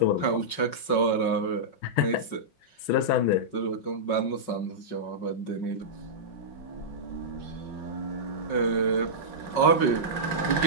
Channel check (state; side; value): late; right; 5.4 ms